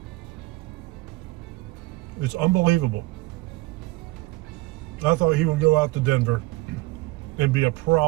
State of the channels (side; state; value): left; quieter; 20.7 dB